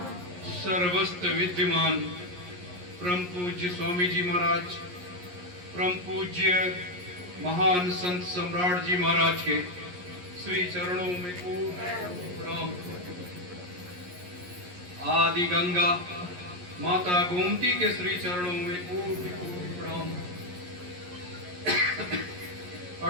सर्वस्त्र विद्यमान परम पूज्य स्वामी जी महाराज, परम पूज्य महान संत सम्राट जी महाराज के श्री चरणों में प्रणाम। आदि गंगा माता गोमती के श्री चरणों में प्रणाम।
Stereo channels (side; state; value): left; late; 11 ms